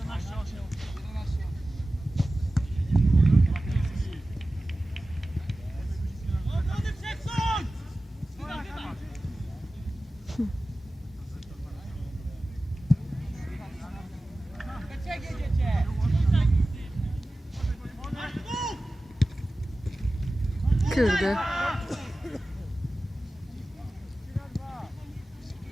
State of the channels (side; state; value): both; normal; correlation 0.96